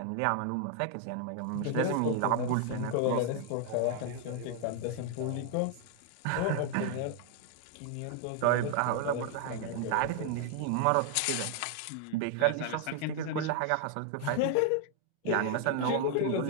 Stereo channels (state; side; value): different; both; correlation 0.00